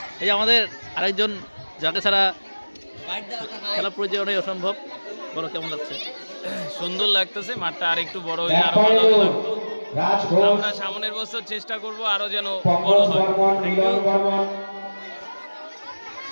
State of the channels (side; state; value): both; inverted; correlation -1.00